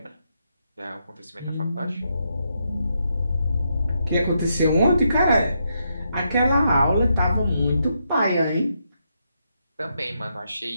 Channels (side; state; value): both; inverted; correlation -0.80